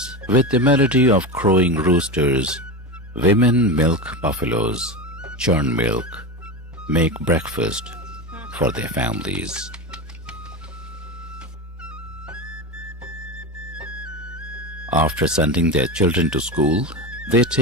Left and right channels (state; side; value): normal; both; correlation 0.21